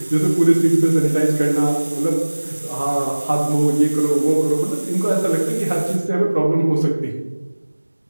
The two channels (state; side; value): inverted; both; correlation -1.00